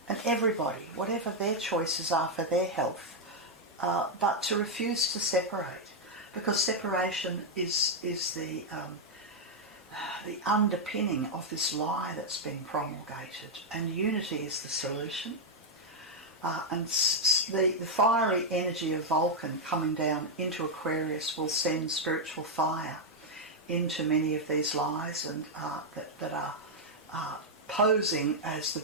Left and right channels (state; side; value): normal; both; correlation -0.01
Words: and everybody, whatever their choices are for their health, but to refuse to separate, because separation is the underpinning of this lie that's been promulgated, and unity is the solution. And the fiery energy of Vulcan coming down into Aquarius will send spiritual fire into many of these lies and that are posing as the